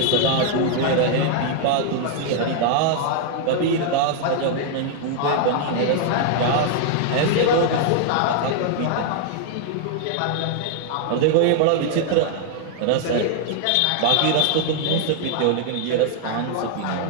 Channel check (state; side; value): different; both; correlation 0.00